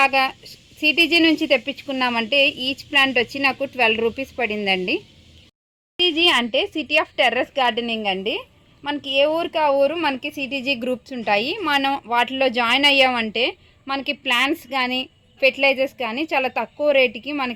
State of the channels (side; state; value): both; identical; correlation 1.00